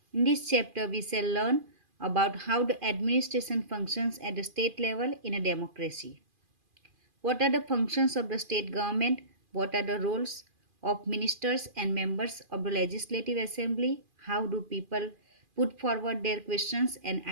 In this chapter, we shall learn about how the administration functions at the state level in a democracy. What are the functions of the state government? What are the roles of ministers and members of the Legislative Assembly? How do people put forward their questions and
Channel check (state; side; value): late; left; 2.5 ms